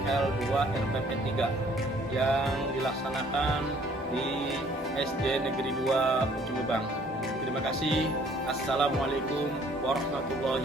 2 RPP 3 yang dilaksanakan di SD Negeri 2 Ujung Lebang. Terima kasih. Assalamualaikum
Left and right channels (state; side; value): normal; both; correlation 0.59